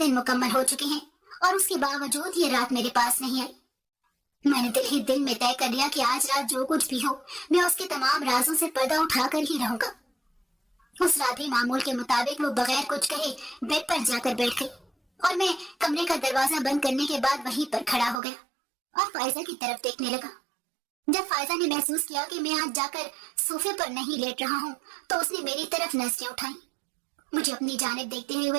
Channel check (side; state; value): left; drops out; at 18.2 s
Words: مکمل ہو چکے ہیں اور اس کے باوجود یہ رات میرے پاس نہیں آئی۔ میں نے دل میں طے کر لیا کہ آج رات جو کچھ بھی ہو میں اس کے تمام رازوں سے پردہ اٹھا کر ہی رہوں گا۔ اس رات بھی معمول کے مطابق وہ بغیر کچھ کہے بیڈ پر جا کر بیٹھ گئی اور میں کمرے کا دروازہ بند کرنے کے بعد وہیں پر کھڑا ہو گیا اور فائزہ کی طرف دیکھنے لگا۔ جب فائزہ نے محسوس کیا کہ میں آج جا کر صوفے پر نہیں لیٹ رہا ہوں تو اس نے میری طرف نظریں اٹھائیں۔ مجھے اپنی جانب دیکھتے